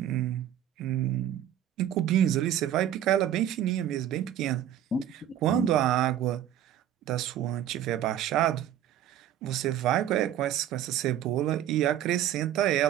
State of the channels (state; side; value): quieter; left; 11.0 dB